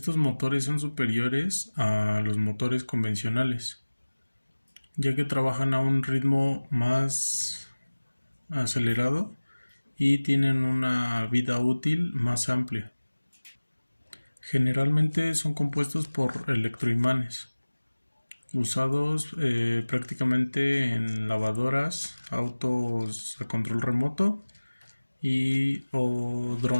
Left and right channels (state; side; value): inverted; both; correlation -1.00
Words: motores son superiores a los motores convencionales, ya que trabajan a un ritmo más acelerado y tienen una vida útil más amplia. Generalmente son compuestos por electroimanes, usados prácticamente en lavadoras, autos a control remoto y o